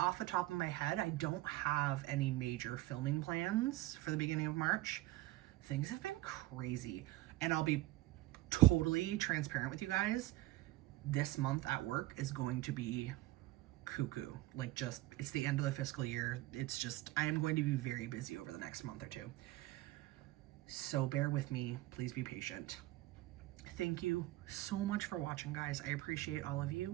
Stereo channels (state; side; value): quieter; left; 17.8 dB